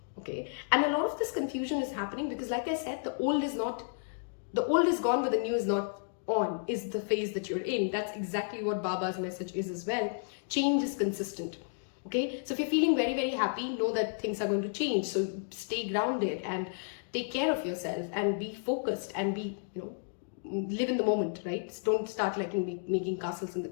Okay, and a lot of this confusion is happening because, like I said, the old is gone, but the new is not on, is the phase that you're in. That's exactly what Baba's message is as well. Change is consistent. Okay, so if you're feeling very, very happy, know that things are going to change. So stay grounded and take care of yourself and be focused and be, live in the moment, right? Don't start like making castles in the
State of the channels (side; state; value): right; silent; digital silence